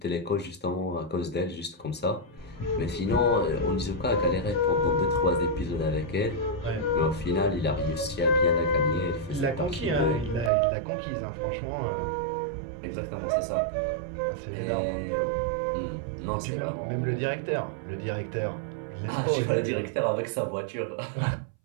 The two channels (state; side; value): drops out; left; at 10.5 s